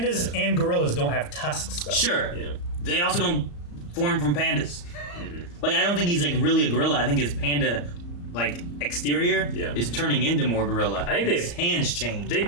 and gorillas don't have tusks, though. Sure. Yeah. They also don't form from pandas. Like, I don't think he's like really a gorilla. I think his panda, like, exterior Yeah. is turning into more gorilla. I think they've- his hands change. They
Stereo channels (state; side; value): late; right; 34 ms